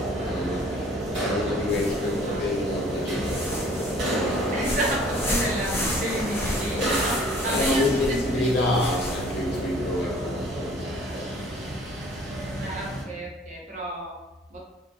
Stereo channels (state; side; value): normal; both; correlation 0.53